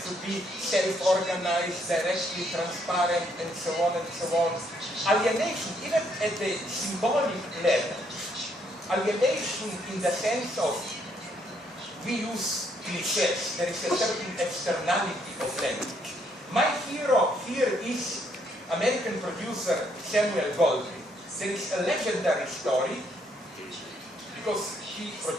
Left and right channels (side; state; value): both; normal; correlation 0.71